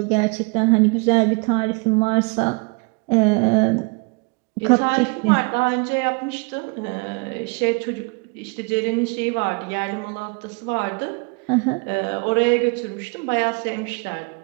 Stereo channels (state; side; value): quieter; left; 31.3 dB